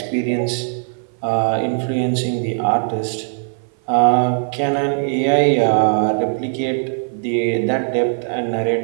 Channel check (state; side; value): silent; left; 58 dB below the other